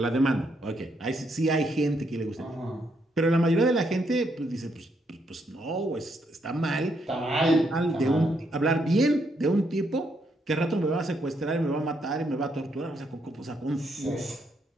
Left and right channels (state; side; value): normal; both; correlation 0.76